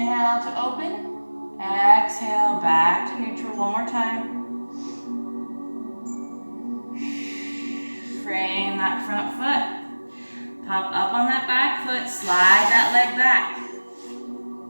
to open. Exhale, back to neutral. One more time. Frame that front foot. Pop up on that back foot. Slide that leg back.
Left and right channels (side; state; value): both; inverted; correlation -1.00